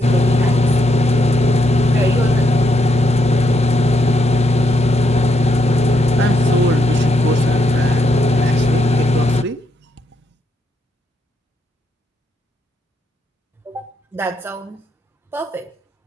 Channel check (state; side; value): normal; both; correlation 0.78